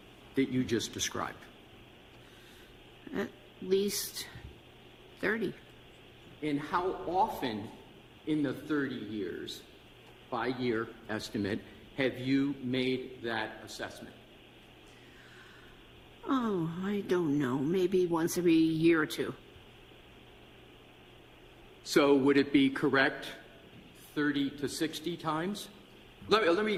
that you just described? At least 30. And how often in the 30 years, by year estimate, have you made that assessment? Oh, I don't know. Maybe once every year or two. So would it be correct 30 to 60 times? Let me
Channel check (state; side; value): identical; both; correlation 1.00